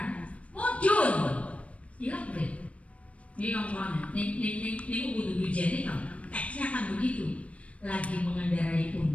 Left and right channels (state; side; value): late; right; 0.064 ms